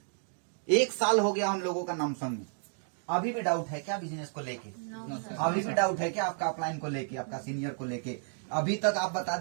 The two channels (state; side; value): silent; left; 57 dB below the other